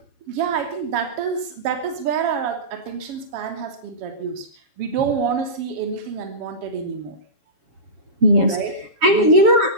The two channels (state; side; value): late; left; 7.2 ms